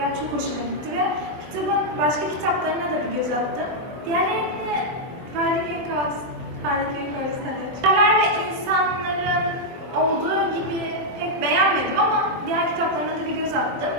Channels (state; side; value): late; left; 24 ms